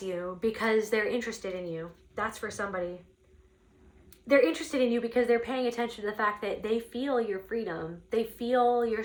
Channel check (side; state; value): both; identical; correlation 1.00